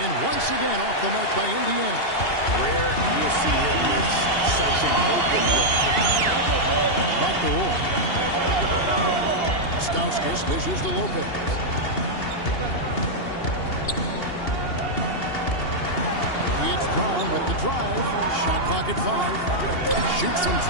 once again off the mark by Indiana. Rare you'll see him miss such an open look. Back to Roy. Stauskas dishes to Lopez. It's Brown with the drive. Shot clock at 5. Shoots from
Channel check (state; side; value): late; right; 2.8 ms